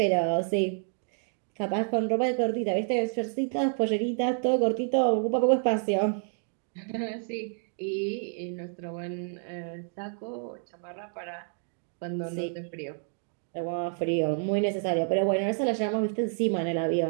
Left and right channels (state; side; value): silent; left; 59 dB below the other